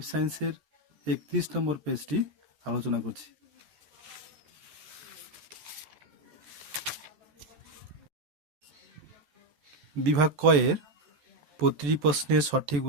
সায়েন্সের 31 নম্বর পেজটি আলোচনা করছি। বিভাগ কয়ের প্রতিটি প্রশ্নের সঠিক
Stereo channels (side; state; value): left; late; 14 ms